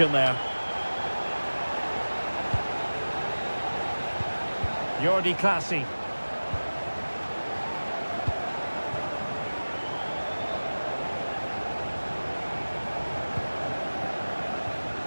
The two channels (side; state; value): both; inverted; correlation -1.00